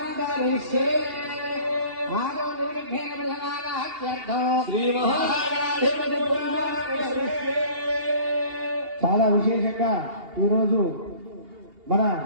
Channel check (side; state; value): left; late; 2.8 ms